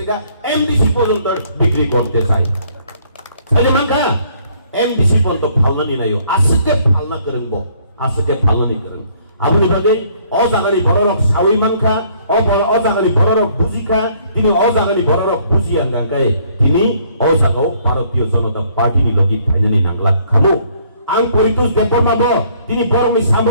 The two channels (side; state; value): both; inverted; correlation -0.64